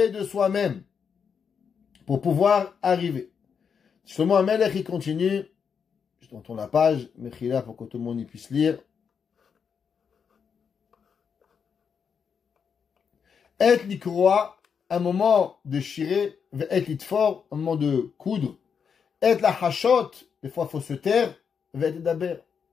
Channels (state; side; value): quieter; right; 6.6 dB